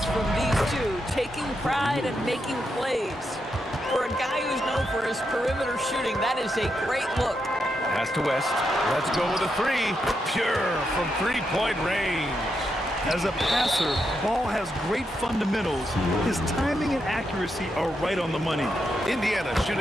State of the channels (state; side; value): normal; both; correlation 0.83